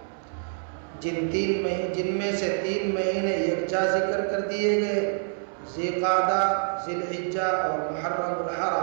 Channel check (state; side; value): silent; left; 60 dB below the other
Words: جن میں سے 3 مہینے یکجا ذکر کر دیے گئے، ذی قعدہ، ذی الحجہ اور محرم